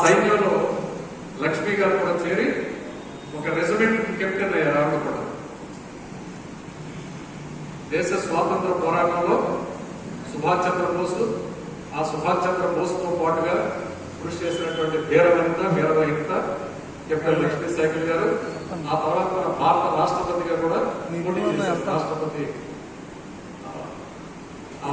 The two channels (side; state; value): both; identical; correlation 1.00